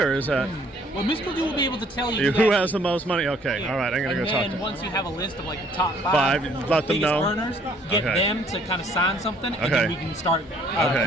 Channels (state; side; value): normal; both; correlation 0.61